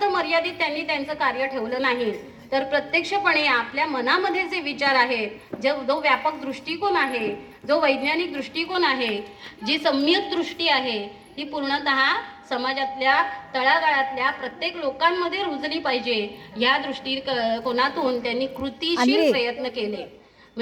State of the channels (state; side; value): identical; both; correlation 1.00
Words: मर्यादित त्यांनी त्यांचं कार्य ठेवलं नाही, तर प्रत्यक्षपणे आपल्या मनामध्ये जे विचार आहेत, जो व्यापक दृष्टिकोन आहे, जो वैज्ञानिक दृष्टिकोन आहे, जी सम्यक दृष्टी आहे, ही पूर्णतः समाजातल्या तळागाळातल्या प्रत्येक लोकांमध्ये रुजली पाहिजे या दृष्टिकोनातून त्यांनी कृतिशील प्रयत्न केले.